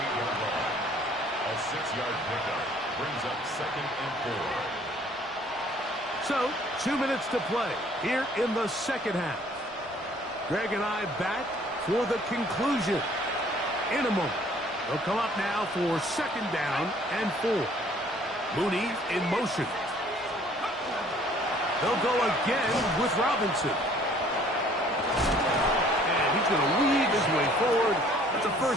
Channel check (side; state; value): both; normal; correlation 0.57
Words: line. A 6-yard pickup brings up 2nd and 4. So, 2 minutes to play here in the second half. Greg and I back for the conclusion in a moment. They'll come up now for 2nd down and 4. Mooney in motion. They'll go again with Robinson. And he's going to weave his way forward. That's a